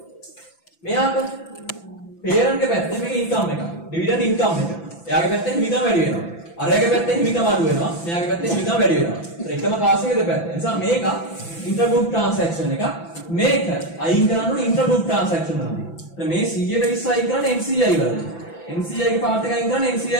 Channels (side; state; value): right; late; 5.9 ms